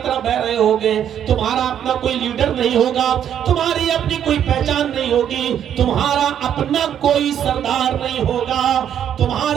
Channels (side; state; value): left; quieter; 9.6 dB